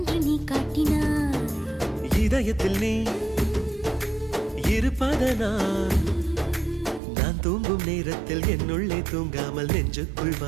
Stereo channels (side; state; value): left; drops out; at 7.0 s